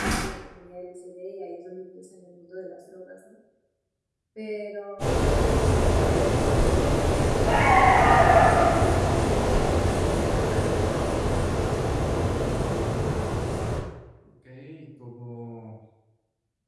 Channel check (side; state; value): both; identical; correlation 1.00